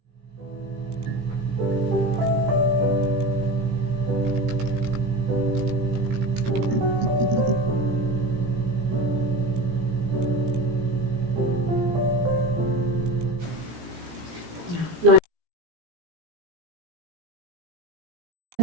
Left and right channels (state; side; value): late; left; 18 ms